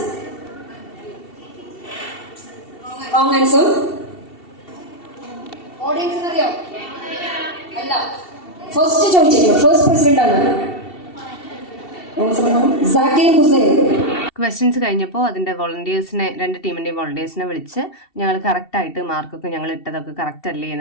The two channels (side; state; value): right; late; 2.7 ms